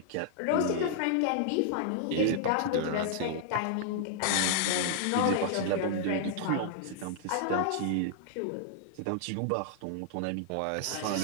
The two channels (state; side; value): different; both; correlation -0.01